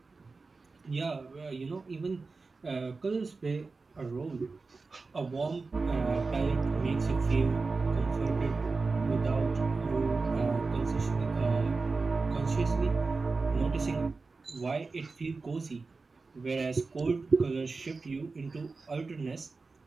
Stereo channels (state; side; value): quieter; left; 4.0 dB